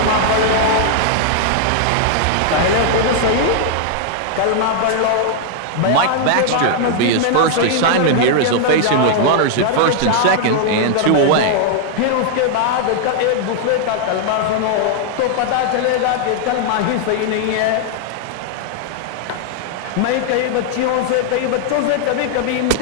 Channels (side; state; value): both; different; correlation 0.00